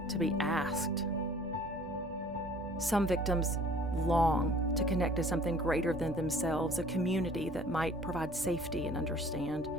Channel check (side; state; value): both; normal; correlation 0.51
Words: to be asked. Some victims long to connect to something greater than themselves, a community that might provide safety and understand.